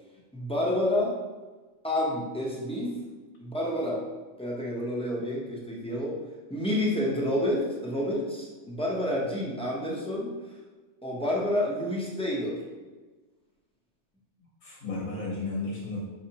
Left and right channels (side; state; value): both; normal; correlation 0.33